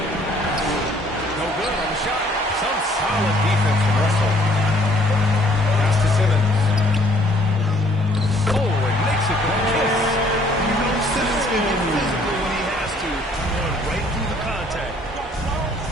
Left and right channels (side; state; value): both; normal; correlation 0.61